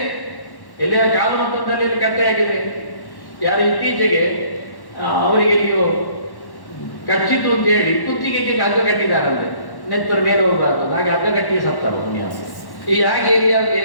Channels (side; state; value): right; late; 1.1 ms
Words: ಎಲ್ಲಿಯ ಕಾಲಮಂತ್ರದಲ್ಲಿ ಕಟ್ಟೆಯಾಗಿದೆ. ಯಾರು ಇತ್ತೀಚೆಗೆ ಅವರಿಗೆ ನೀವು ಕಚ್ಚಿತು ಅಂತ ಹೇಳಿ ಕುತ್ತಿಗೆಗೆ ಹಗ್ಗ ಕಟ್ಟಿದಾರಂತೆ, ನೆತ್ತರ ಮೇಲೆ ಹೋಗಬಾರ್ದು, ಹಾಗೆ ಹಗ್ಗ ಕಟ್ಟಿ ಸತ್ತವ ಪುಣ್ಯ. ಈ ಹಾಗೆ